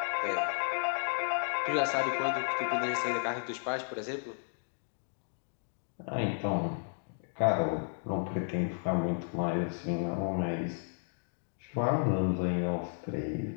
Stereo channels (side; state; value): right; silent; digital silence